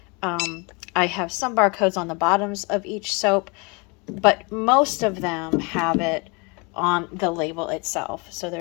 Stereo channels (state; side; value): quieter; right; 30.0 dB